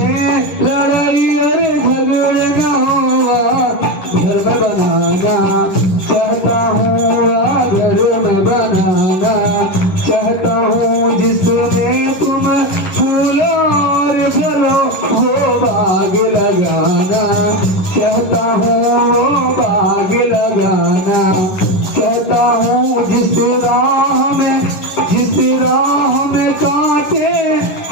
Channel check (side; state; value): right; late; 11 ms